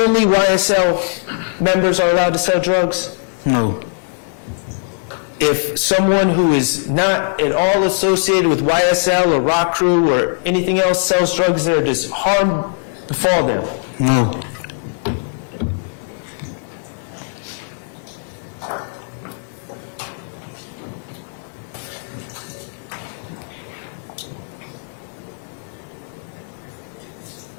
only YSL members are allowed to sell drugs? No. If someone who is not at all associated with YSL or Rock Crew or anything else sells drugs there, does harm befall them? No.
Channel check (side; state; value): right; silent; 66 dB below the other